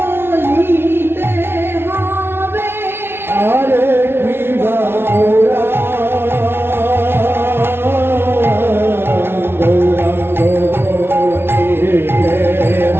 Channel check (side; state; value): left; late; 0.11 ms